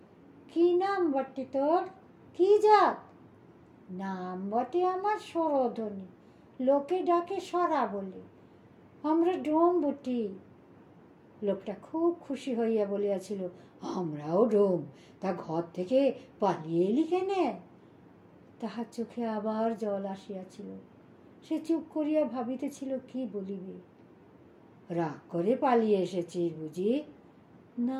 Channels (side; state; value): both; identical; correlation 1.00